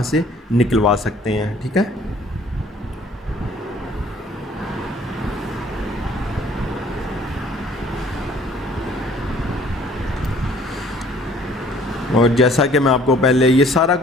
سے نکلوا سکتے ہیں. ٹھیک ہے، اور جیسا کہ میں آپ کو پہلے یہ سارا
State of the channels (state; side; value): normal; both; correlation 0.56